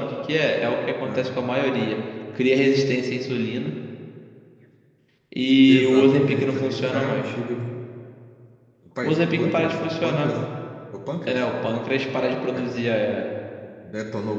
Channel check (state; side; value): identical; both; correlation 1.00